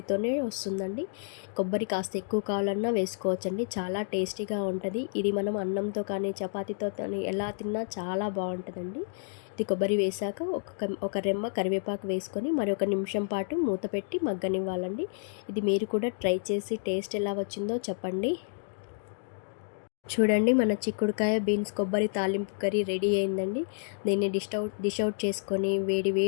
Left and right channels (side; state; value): right; silent; digital silence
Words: వస్తుందండి. కొబ్బరి కాస్త ఎక్కువ కావాలన్నా వేసుకోవచ్చండి, చాలా టేస్టీగా ఉంటుంది. ఇది మనం అన్నంతో కానీ చపాతీతో కానీ ఎలా తిన్నా చాలా బాగుంటుందండి. ఇది కొబ్బరి వేసాక ఒక రెమ్మ కరివేపాకు వేసుకొని మరి 1 నిమిషం పాటు మూత పెట్టి మగ్గనివ్వాలండి. ఇది మీరు కూడా ట్రై చేసి టేస్ట్ ఎలా వచ్చిందో చెప్పండి. చూడండి, మన చిక్కుడుకాయ బీన్స్ కొబ్బరి తాలింపు కర్రీ రెడీ అయిందండి. దీన్ని డిష్ అవుట్ చేసుకొని వేడి